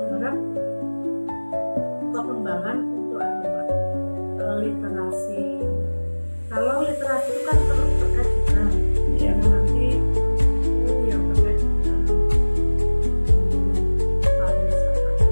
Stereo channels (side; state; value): both; inverted; correlation -1.00